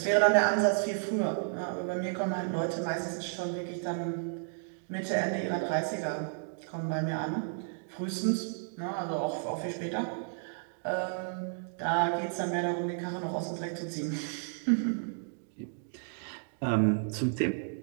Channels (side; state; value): left; silent; digital silence